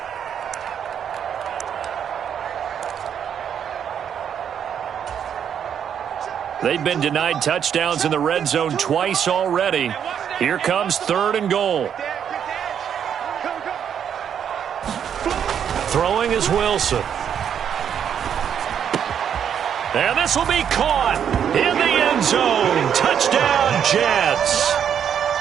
They've been denied touchdowns in the red zone twice already. Here comes 3rd and goal. Throwing is Wilson. And this will be caught in the end zone. Touchdown, Jets.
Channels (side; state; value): left; quieter; 8.5 dB